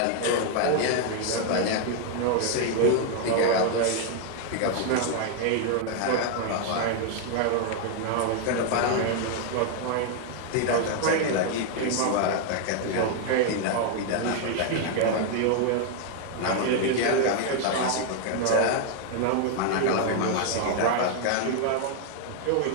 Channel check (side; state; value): both; different; correlation 0.00